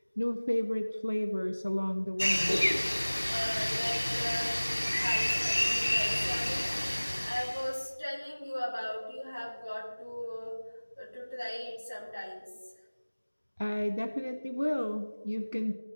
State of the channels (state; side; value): inverted; both; correlation -1.00